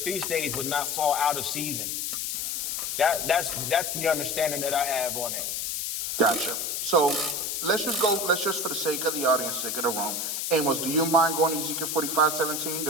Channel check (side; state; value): left; noise; hiss, 2 dB below the sound